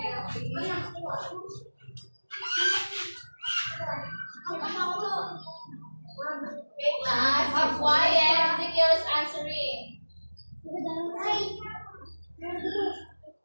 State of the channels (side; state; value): both; inverted; correlation -1.00